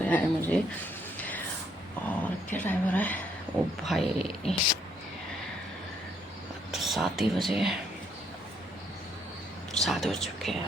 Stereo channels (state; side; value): normal; both; correlation 0.69